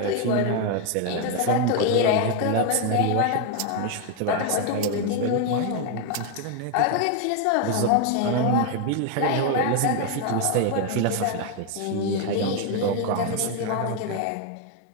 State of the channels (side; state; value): both; different; correlation 0.01